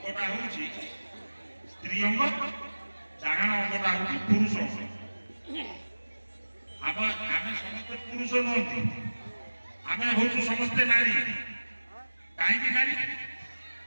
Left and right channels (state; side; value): inverted; both; correlation -1.00